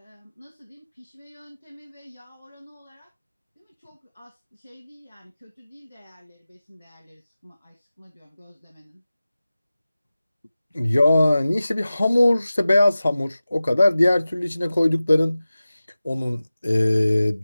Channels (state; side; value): inverted; both; correlation -0.96